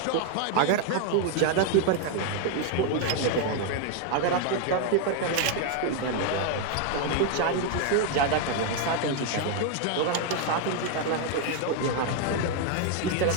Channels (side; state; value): both; different; correlation 0.00